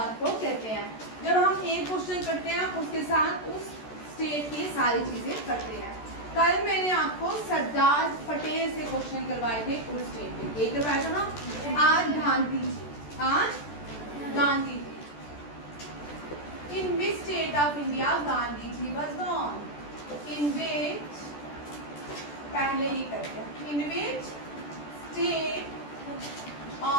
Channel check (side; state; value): right; late; 14 ms